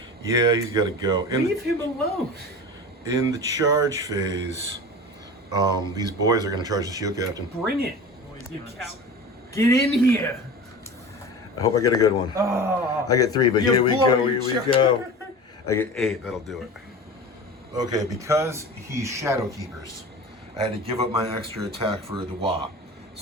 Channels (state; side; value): normal; both; correlation 0.34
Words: Yeah, he's got to go. Leave him alone. In the charge phase, these boys are going to charge the shield captain. Bring it. You cow. Get in here. I hope I get a good one. Oh, I get 3, but here we go, bloody here we go. I get 8, that'll do it. Okay, because he's Shadow Keepers, I had to give up my extra attack for the Wa.